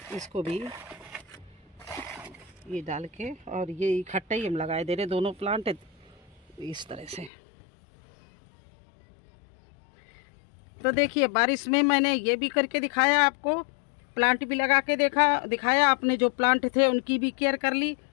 इसको भी ये डाल के, और ये इकट्ठे ही हम लगाए दे रहे दोनों प्लांट इस तरह से। तो देखिए बारिश में मैंने ये भी करके दिखाया आपको, प्लांट भी लगा के दिखाया। अपने जो प्लांट थे उनकी भी केयर कर ली।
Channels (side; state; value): right; drops out; at 7.3 s